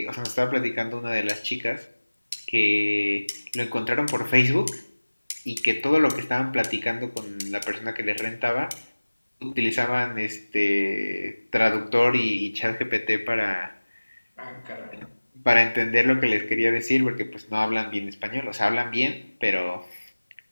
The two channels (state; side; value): inverted; both; correlation -1.00